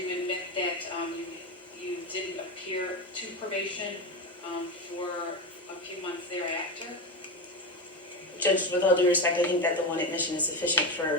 admit that you didn't appear to probation for a few months thereafter? Judge, with all due respect, I think that the one admission is sufficient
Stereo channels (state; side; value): normal; both; correlation 0.18